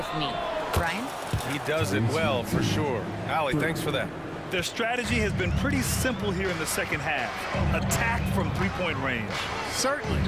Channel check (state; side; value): identical; both; correlation 1.00